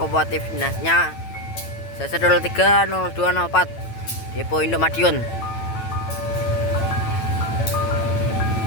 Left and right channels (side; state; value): right; late; 9.0 ms